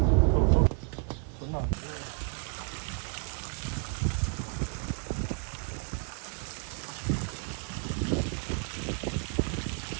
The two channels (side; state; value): left; quieter; 39.4 dB